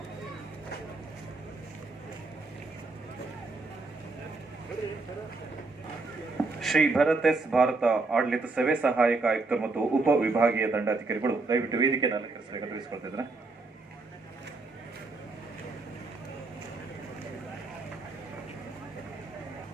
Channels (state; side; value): quieter; left; 3.6 dB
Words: Shri Bharat S Bharat ಆಡಳಿತ ಸೇವೆ ಸಹಾಯಕ ಆಯುಕ್ತರು ಮತ್ತು ಉಪ ವಿಭಾಗೀಯ ದಂಡಾಧಿಕಾರಿಗಳು ದಯವಿಟ್ಟು ವೇದಿಕೆಯನ್ನು ಅಲಂಕರಿಸಬೇಕು ತಿಳಿಸಿಕೊಳ್ತಿದ್ರೆ.